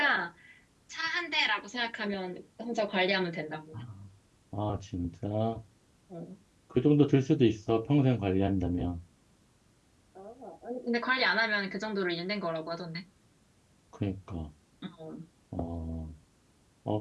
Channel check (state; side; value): identical; both; correlation 1.00